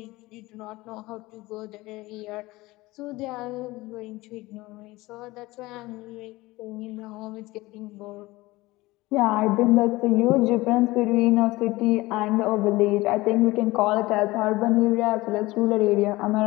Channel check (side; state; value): right; quieter; 20.1 dB